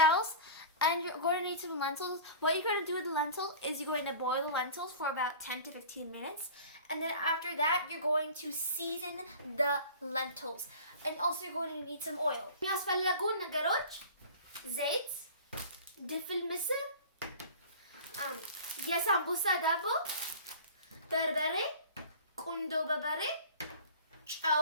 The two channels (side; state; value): both; inverted; correlation -0.39